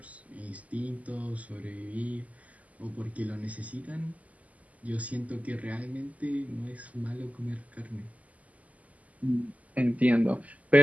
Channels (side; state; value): left; late; 0.074 ms